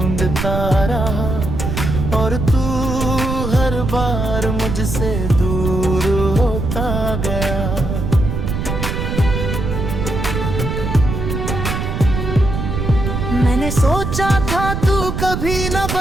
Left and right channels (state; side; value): noise; right; rumble, 3 dB below the sound